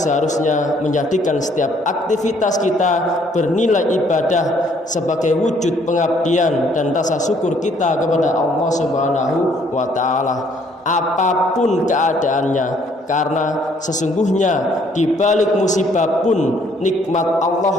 menjadikan setiap aktivitas kita bernilai ibadah sebagai wujud pengabdian dan rasa syukur kita kepada Allah Subhanahu wa taala. Apapun keadaannya, karena sesungguhnya di balik musibah pun nikmat Allah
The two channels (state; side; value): normal; both; correlation 0.64